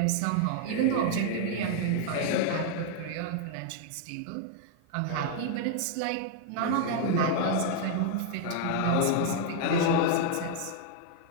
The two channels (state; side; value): different; both; correlation 0.00